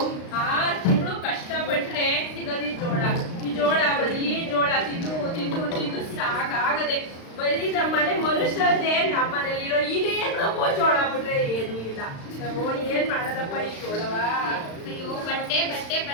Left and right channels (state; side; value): late; right; 35 ms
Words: 6 ತಿಂಗಳು ಕಷ್ಟಪಟ್ರೆ ಸಿಗದಿ ಜೋಳ. ಈ ಜೋಳ ಬರೀ ಜೋಳ ತಿಂದು ತಿಂದು ತಿಂದು ಸಾಕಾಗದೆ. ಬರೀ ನಮ್ಮನೆ ಮನುಷ್ಯರೇ ನಮ್ಮನೇಲಿರೋ ಇದೇನಪ್ಪೋ ಜೋಳ ಬಿಟ್ರೆ ಏನೂ ಇಲ್ಲ. ನಾವು ಏನ್ ಮಾಡೋದಪ್ಪ ಈ ಜೋಳವ? ಅಯ್ಯೋ ಬಟ್ಟೆ ಬಟ್ಟೆ